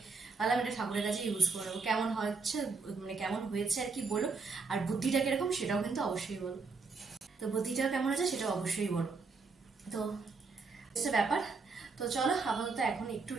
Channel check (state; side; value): quieter; left; 4.4 dB